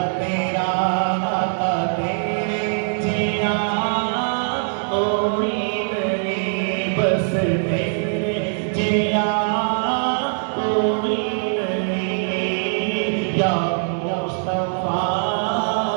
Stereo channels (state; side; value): silent; left; digital silence